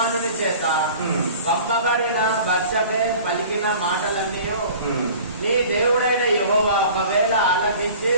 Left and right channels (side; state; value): both; inverted; correlation -0.44